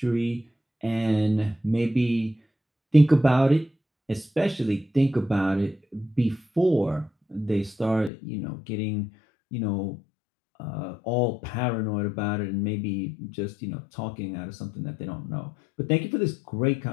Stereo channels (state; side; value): drops out; right; at 8.1 s